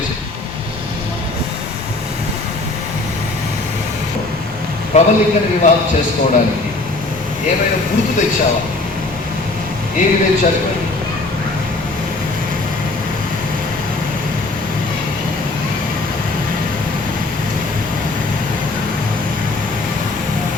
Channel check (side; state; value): right; quieter; 3.2 dB